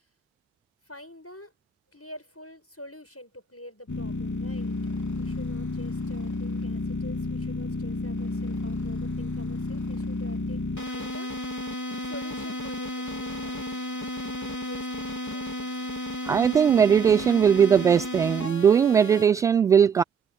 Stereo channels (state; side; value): quieter; left; 5.3 dB